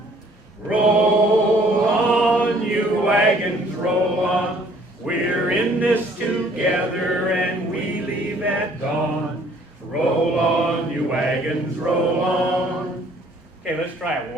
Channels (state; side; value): normal; both; correlation 0.59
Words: Roll on, you wagons, roll on. We're in this together and we leave at dawn. Roll on, you wagons, roll on. Okay, let's try it